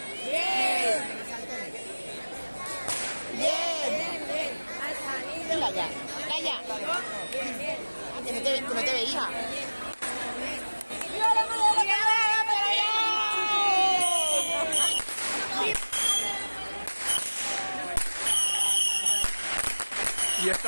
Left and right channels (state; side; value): inverted; both; correlation -1.00